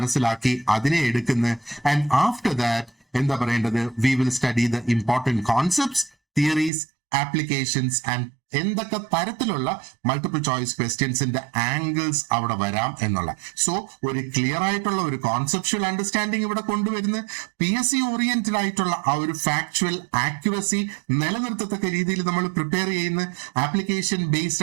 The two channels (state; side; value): drops out; left; at 6.7 s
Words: അതിനെ എടുക്കുന്നു. ആൻഡ് ആഫ്റ്റർ ദാറ്റ് എന്താ പറയേണ്ടത്, we will study the important concepts, theories, applications and എന്തൊക്കെ തരത്തിലുള്ള മൾട്ടിപ്പിൾ ചോയ്സ് ക്വസ്റ്റ്യൻസിന്റെ ആംഗിൾസ് അവിടെ വരാം എന്നുള്ള. സോ ഒരു ക്ലിയർ ആയിട്ടുള്ള ഒരു കോൺസെപ്ച്വൽ അണ്ടർസ്റ്റാൻഡിങ് ഇവിടെ കൊണ്ടുവരുന്ന PSC ഓറിയന്റഡ് ആയിട്ടുള്ള ആ ഒരു ഫാക്ച്വൽ ആക്യുറസി നിലനിർത്തത്തക്ക രീതിയിൽ നമ്മൾ പ്രിപ്പയർ ചെയ്യുന്ന ആപ്ലിക്കേഷൻ